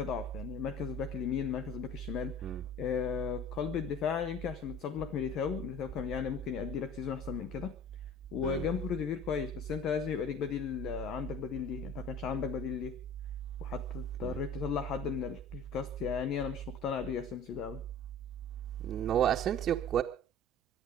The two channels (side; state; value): both; normal; correlation 0.43